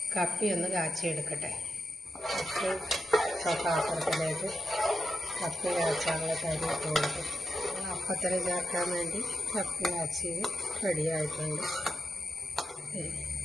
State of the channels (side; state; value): both; normal; correlation 0.87